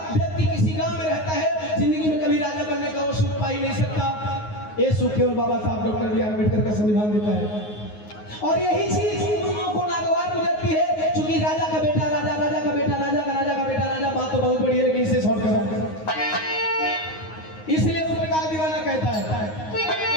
व्यक्ति किसी गांव में रहता है, जिंदगी में कभी राजा बनने का वो सुख पा ही नहीं सकता। ये सुख केवल बाबा साहब डॉक्टर बी.आर. अम्बेडकर का संविधान देता है। और यही चीज उन लोगों को नागवार गुजरती है, क्योंकि राजा का बेटा राजा, राजा का बेटा राजा, का राजा का बेटा राजा, बात तो बहुत बड़ी है लेकिन इसे शॉर्ट करा, इसलिए उस प्रकार दीवाना कहता है।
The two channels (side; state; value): right; late; 9.5 ms